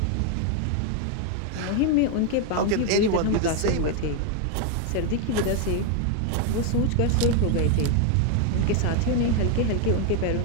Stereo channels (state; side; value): different; both; correlation 0.01